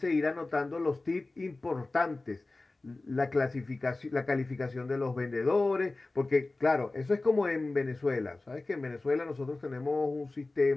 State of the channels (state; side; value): quieter; right; 3.2 dB